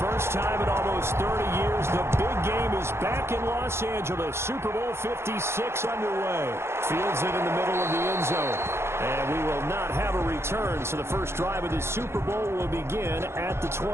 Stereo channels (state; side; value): late; left; 0.12 ms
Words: time in almost 30 years, the big game is back in Los Angeles. Super Bowl 56 underway. Fields it in the middle of the end zone. And we will not have a return, so the first drive of the Super Bowl will begin at the